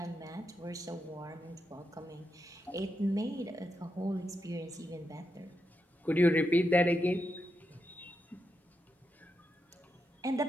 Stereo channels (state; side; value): normal; both; correlation 0.85